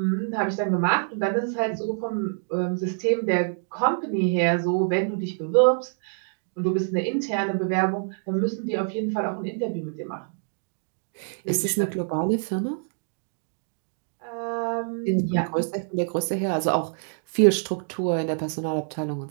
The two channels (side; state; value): left; silent; digital silence